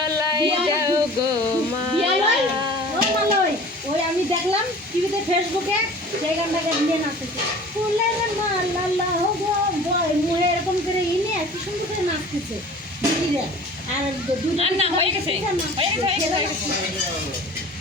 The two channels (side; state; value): both; normal; correlation 0.43